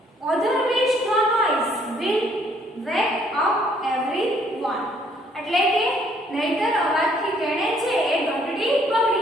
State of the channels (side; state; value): both; normal; correlation 0.65